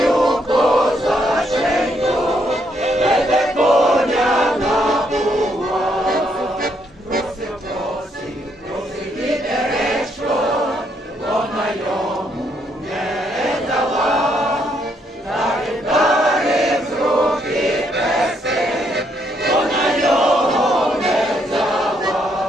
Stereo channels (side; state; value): both; normal; correlation 0.73